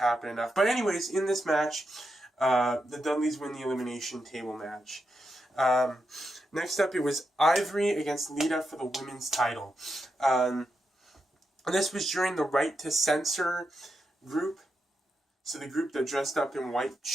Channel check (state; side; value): normal; both; correlation 0.86